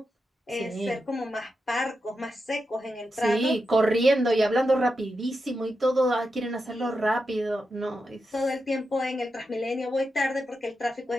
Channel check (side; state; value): both; normal; correlation 0.88